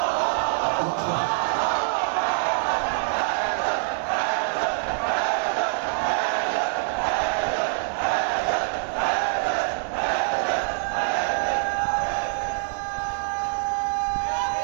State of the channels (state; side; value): silent; left; 62 dB below the other